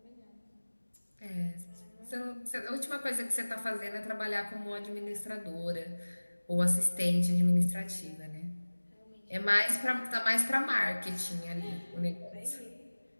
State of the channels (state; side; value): inverted; both; correlation -1.00